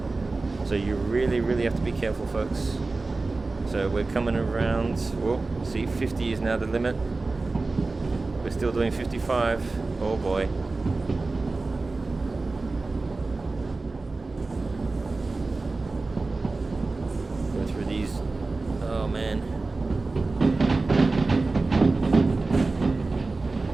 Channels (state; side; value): quieter; left; 3.6 dB